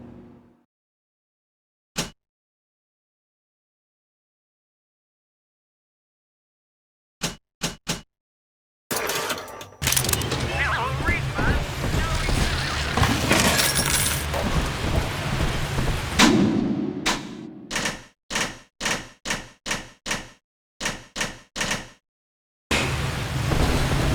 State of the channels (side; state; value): both; identical; correlation 1.00